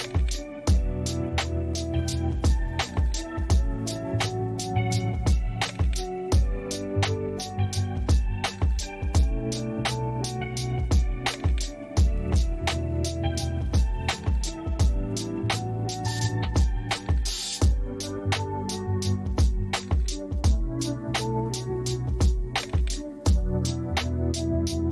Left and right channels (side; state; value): both; identical; correlation 1.00